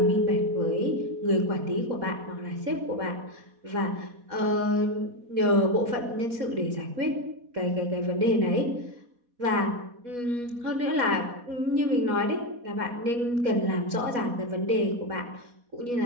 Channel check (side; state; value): left; late; 4.1 ms